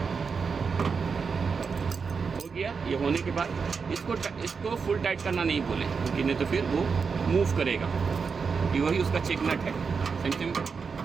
हो गया, ये होने के बाद इसको फुल टाइट करना नहीं बोले, क्योंकि नहीं तो फिर वो मूव करेगा, क्योंकि वही उसका चेक नट है, सेम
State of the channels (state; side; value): quieter; left; 5.5 dB